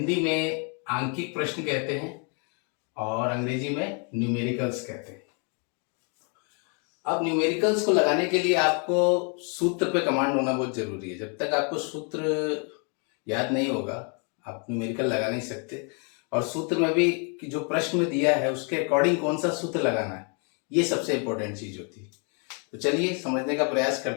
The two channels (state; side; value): quieter; right; 37.6 dB